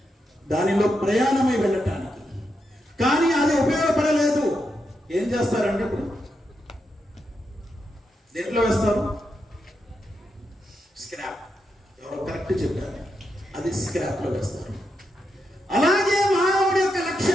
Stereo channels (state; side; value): normal; both; correlation 0.84